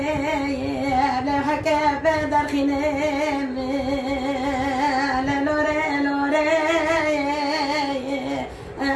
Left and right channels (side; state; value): both; identical; correlation 1.00